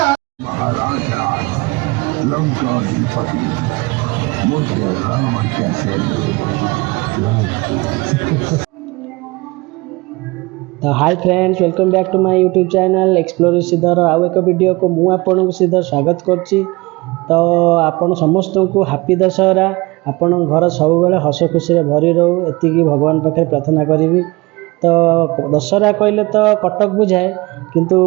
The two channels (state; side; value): quieter; left; 23.5 dB